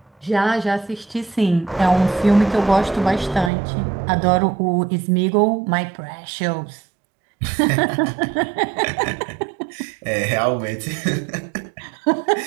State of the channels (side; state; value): left; drops out; at 3.5 s